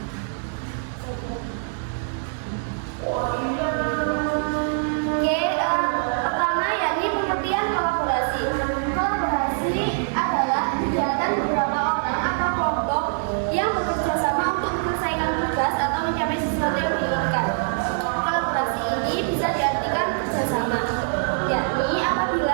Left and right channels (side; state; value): left; silent; digital silence